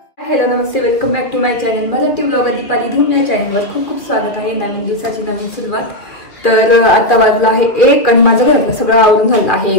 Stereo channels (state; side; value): late; right; 2.7 ms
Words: हॅलो नमस्ते, welcome back to my channel Marathi blogger Deepali Dhoom. या चॅनलवर खूप खूप स्वागत आहे. नवीन दिवसाची नवीन सुरुवात. तर आता वाजला आहे 1 आणि माझं घरातलं सगळं आवरून झालं आहे.